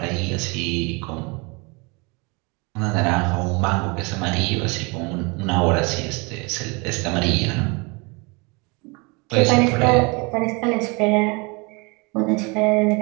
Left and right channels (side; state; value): left; quieter; 28.9 dB